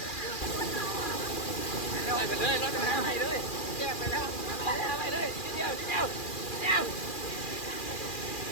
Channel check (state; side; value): late; right; 2.4 ms